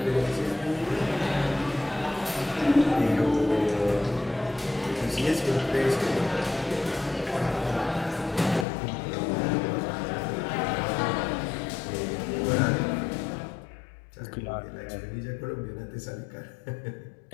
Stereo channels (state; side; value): drops out; right; at 8.7 s